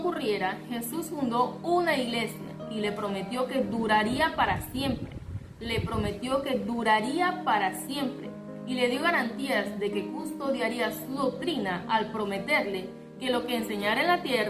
Jesús fundó una iglesia y le prometió que duraría para siempre. Le prometió que duraría para siempre y le dio garantías de que custodiaría su doctrina al prometerle que lo que enseñara en la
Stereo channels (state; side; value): identical; both; correlation 1.00